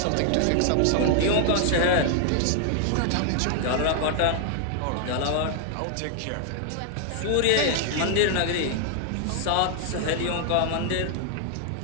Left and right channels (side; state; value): both; different; correlation 0.00